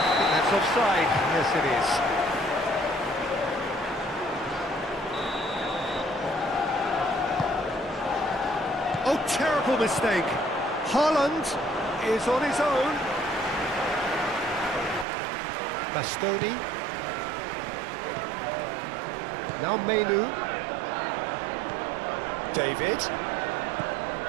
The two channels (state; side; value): drops out; left; at 15.1 s